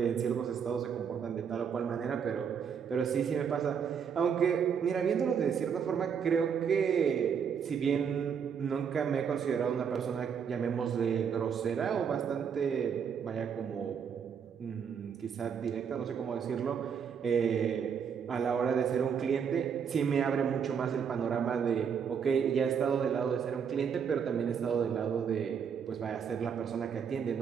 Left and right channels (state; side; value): quieter; left; 7.2 dB